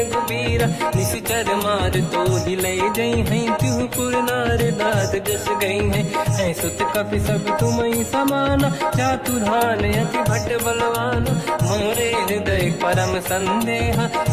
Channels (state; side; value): identical; both; correlation 1.00